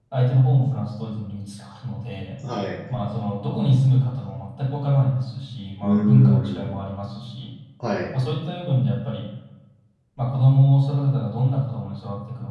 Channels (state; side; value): identical; both; correlation 1.00